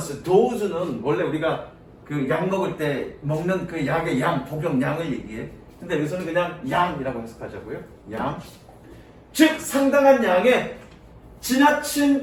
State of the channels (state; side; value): identical; both; correlation 1.00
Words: dose는 원래 우리가 그 약 먹을 때 먹는 그 약의 양, 복용량을 얘기해. 근데 여기서는 그냥 양이라고 해석하자고요. 양. 즉 상당한 양의